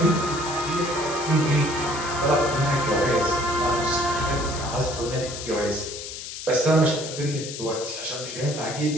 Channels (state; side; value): noise; left; hiss, 9 dB below the sound